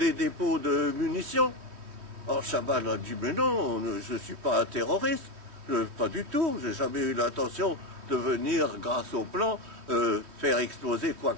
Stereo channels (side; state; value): left; late; 3.1 ms